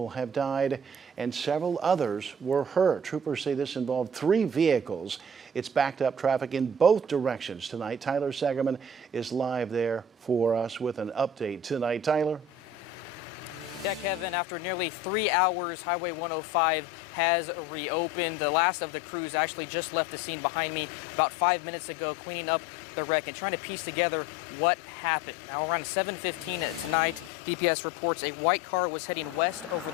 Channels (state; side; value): normal; both; correlation 0.43